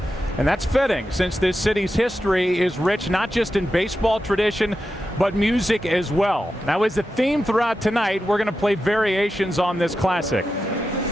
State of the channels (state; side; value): normal; both; correlation 0.90